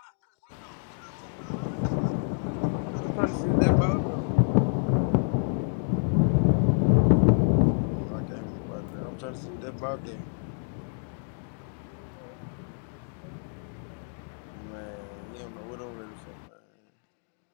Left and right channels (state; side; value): silent; right; 58 dB below the other